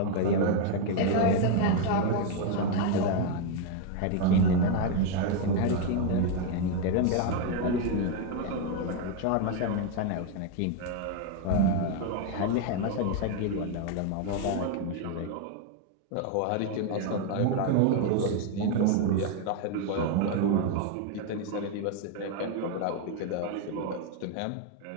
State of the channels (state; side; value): different; both; correlation 0.01